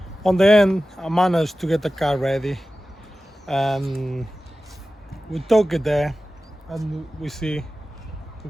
On the end, I managed to get the car ready. And we took it there and we see, if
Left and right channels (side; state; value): both; normal; correlation 0.95